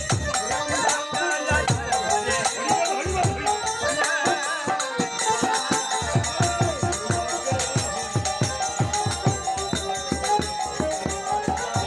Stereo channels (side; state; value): both; identical; correlation 1.00